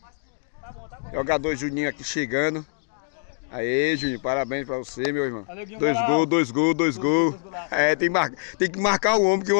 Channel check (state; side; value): silent; right; 57 dB below the other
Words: Jogador Juninho aqui chegando. Aê, Juninho, parabéns pra você, meu irmão. 2 gols. É, tem que marcar o homem, porque